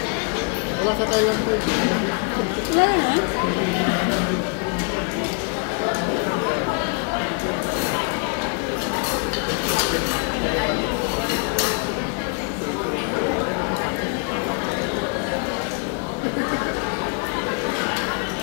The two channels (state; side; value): quieter; right; 36.6 dB